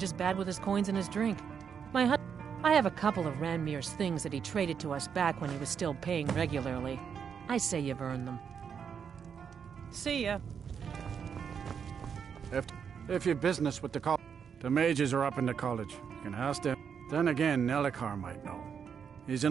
bad with his coins and his drink. I have a couple of Ranmir's things that he traded to us back when he was still paying regularly. I say you've earned them. See ya. If you're business with the college, the mages are up in the college. You can ask them. Then again, Nelikar might know. He's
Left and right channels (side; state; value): left; quieter; 7.1 dB